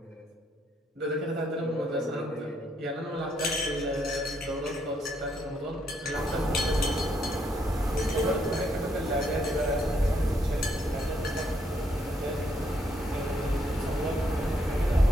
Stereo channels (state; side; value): normal; both; correlation 0.74